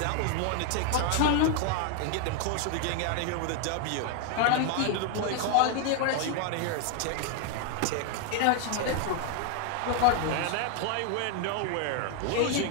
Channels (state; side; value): different; both; correlation 0.01